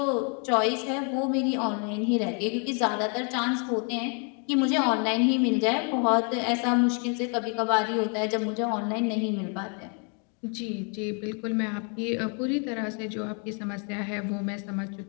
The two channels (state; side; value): quieter; right; 38.7 dB